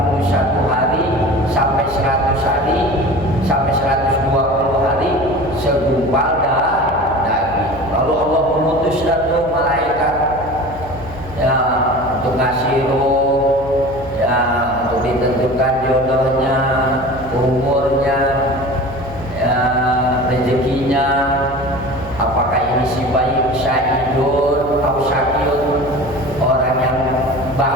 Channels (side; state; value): left; noise; hum, 15 dB below the sound